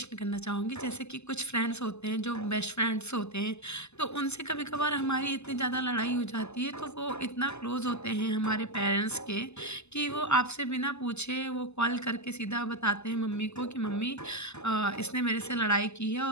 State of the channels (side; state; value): right; late; 0.81 ms